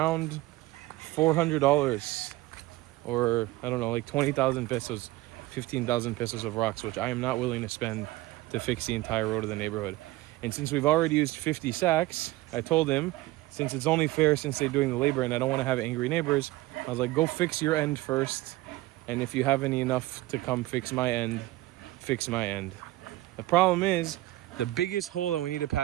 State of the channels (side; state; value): left; quieter; 18.0 dB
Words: $400 or I don't know, like 20,000 pesos. 15,000 pesos of rocks, which I am not willing to spend to fix the entire road of the neighborhood. And since we've already used 50 sacks, I told him, since it's only fair since they're doing the labor and I don't want to have angry neighbors, I was like, go fix your end first. And if you have any enough to come fix my end, fix my end. The problem is, the biggest hole that we need to